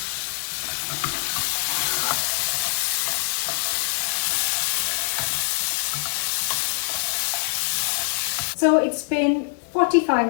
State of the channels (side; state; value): right; silent; 61 dB below the other